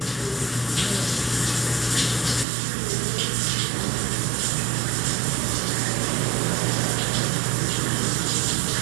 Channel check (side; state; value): left; drops out; at 2.5 s